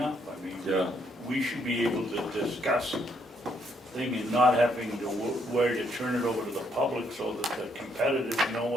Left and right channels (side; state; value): both; normal; correlation 0.72